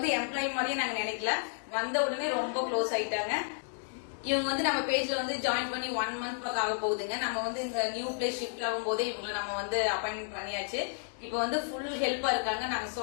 எம்ப்ளாயி மாதிரியே நாங்க நினைக்கல, வந்த உடனே ரொம்ப க்ளோஸ் ஆயிட்டாங்க. இவங்க வந்து நம்ம பேஜ்ல வந்து ஜாயின் பண்ணி 1 month பக்கம் ஆக போகுதுங்க. நம்ம வந்து இந்த நியூ பிளேஸ் ஷிஃப்ட் ஆகும் போதே இவங்களை நம்ம வந்து அப்பாயின்மெண்ட் பண்ணியாச்சு. இப்ப வந்து ஃபுல் ஹெல்ப்பா இருக்காங்க. நாங்க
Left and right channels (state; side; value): silent; right; digital silence